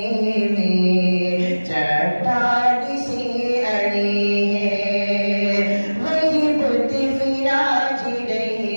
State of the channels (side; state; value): both; inverted; correlation -1.00